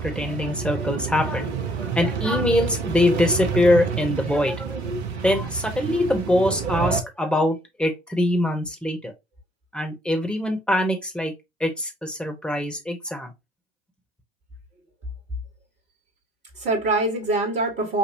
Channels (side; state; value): both; normal; correlation 0.65